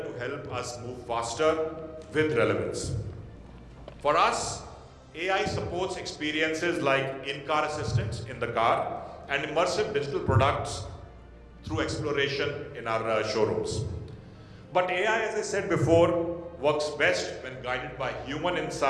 to help us move faster with relevance. For us, AI supports experiences like in-car assistance in the car and immersive digital products through exploration in our showrooms. But AI, as I said before, works best when guided by human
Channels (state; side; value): identical; both; correlation 1.00